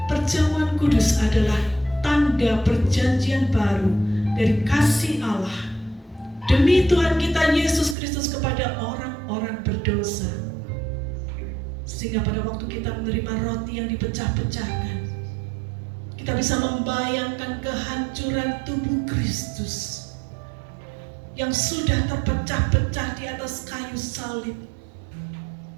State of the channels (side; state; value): left; drops out; at 8.0 s